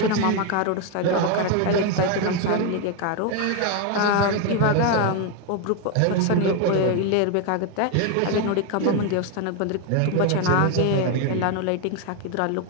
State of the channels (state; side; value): different; both; correlation 0.01